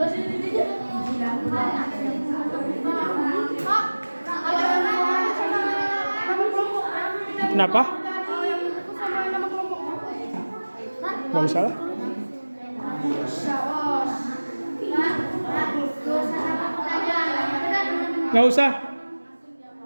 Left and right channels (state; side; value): inverted; both; correlation -1.00